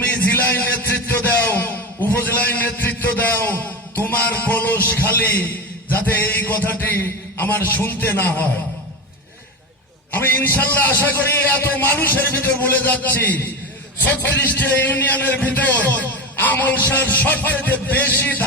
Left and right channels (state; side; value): normal; both; correlation 0.22